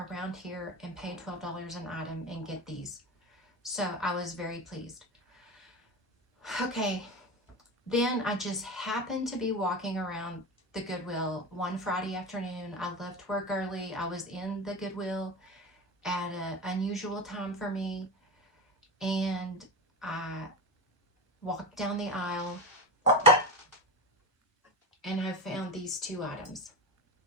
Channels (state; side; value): normal; both; correlation 0.22